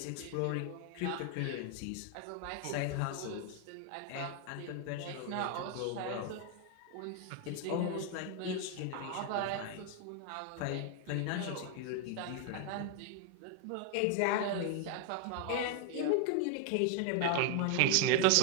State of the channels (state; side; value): different; both; correlation 0.01